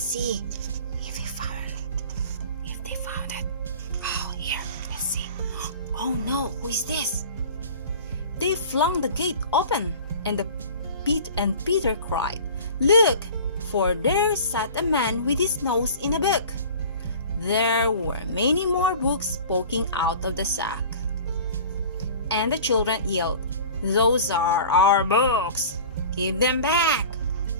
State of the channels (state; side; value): inverted; both; correlation -0.42